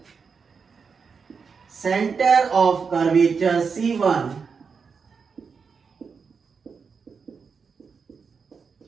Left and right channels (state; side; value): quieter; left; 5.6 dB